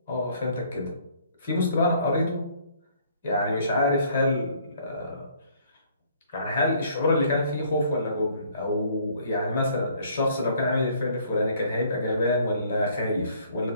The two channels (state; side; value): inverted; both; correlation -0.61